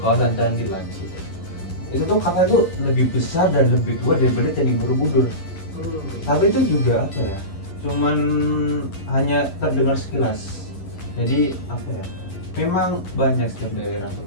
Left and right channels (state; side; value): late; right; 11 ms